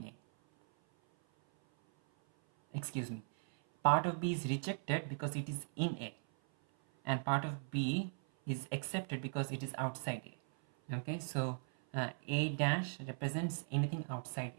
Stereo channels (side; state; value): left; silent; 52 dB below the other